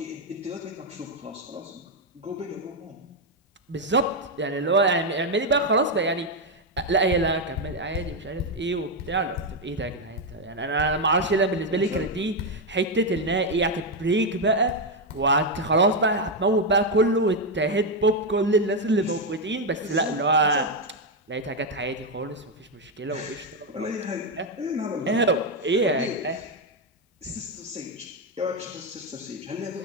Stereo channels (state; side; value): normal; both; correlation 0.04